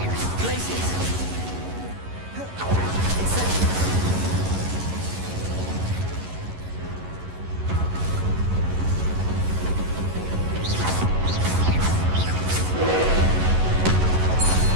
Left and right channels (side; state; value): left; late; 11 ms